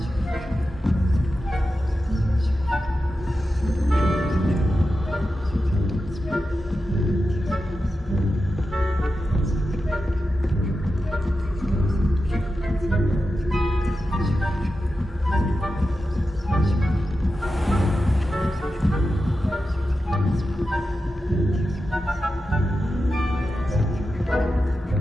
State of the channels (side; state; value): both; normal; correlation 0.91